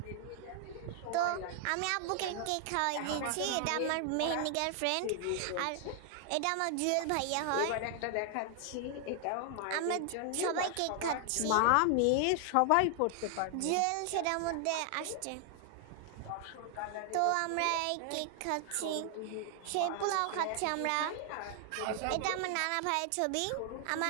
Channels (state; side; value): different; both; correlation 0.00